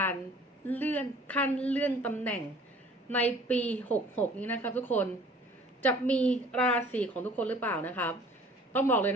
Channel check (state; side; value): normal; both; correlation 0.51